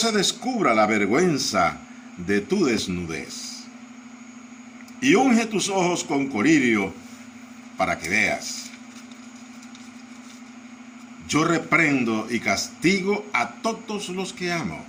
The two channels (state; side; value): identical; both; correlation 1.00